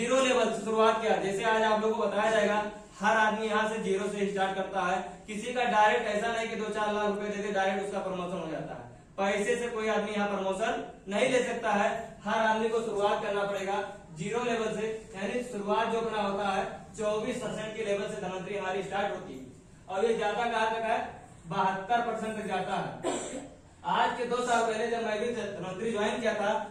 लेवल से शुरुआत किया। जैसे आज आप लोगों को बताया जाएगा, हर आदमी यहाँ से 0 से स्टार्ट करता है। किसी का डायरेक्ट ऐसा नहीं कि 2-4 लाख रुपए देके डायरेक्ट उसका प्रमोशन हो जाता है। पैसे से कोई आदमी यहाँ प्रमोशन नहीं ले सकता है। हर आदमी को शुरुआत करना पड़ेगा 0 लेवल से। यानी शुरुआत जो अपना होता है 24% के लेवल से धनवंतरी हमारी स्टार्ट होती है और ये जाता कहाँ तक है? 72% तक जाता है। आज के 2 साल पहले जब मैं भी धनवंतरी ज्वाइन किया था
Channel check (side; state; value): both; identical; correlation 1.00